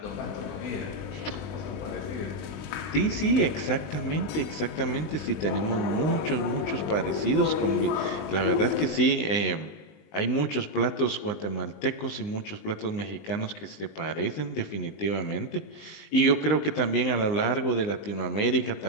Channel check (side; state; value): right; late; 19 ms